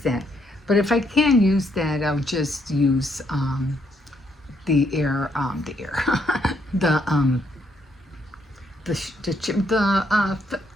But if I can't use that, I'll just use the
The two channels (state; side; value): normal; both; correlation 0.73